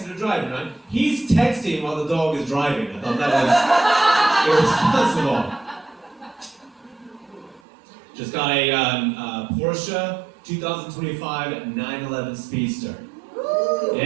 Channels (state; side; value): drops out; left; at 7.6 s